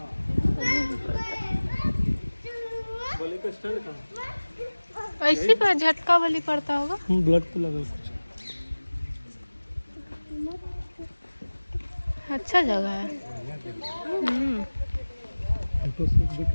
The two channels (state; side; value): inverted; both; correlation -1.00